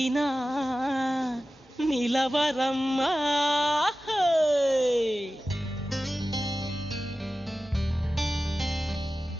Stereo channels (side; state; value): both; normal; correlation 0.95